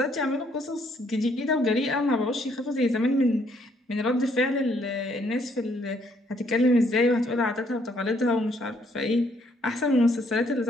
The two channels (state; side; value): normal; both; correlation 0.68